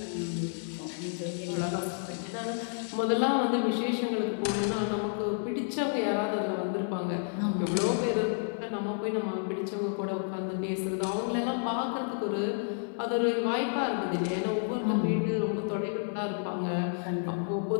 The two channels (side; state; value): right; silent; digital silence